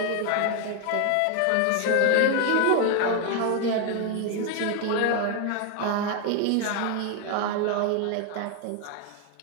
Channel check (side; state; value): both; different; correlation 0.01